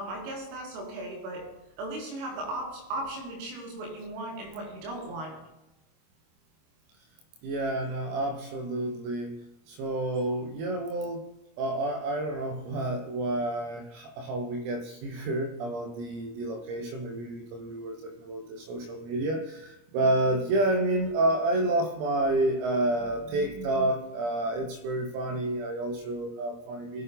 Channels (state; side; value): late; left; 25 ms